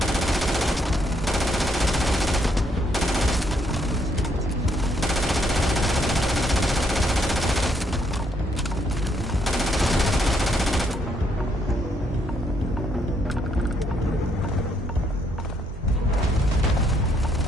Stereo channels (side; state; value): both; normal; correlation 0.72